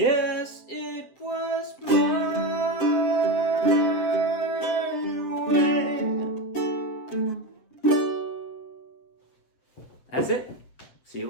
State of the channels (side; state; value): right; late; 7.9 ms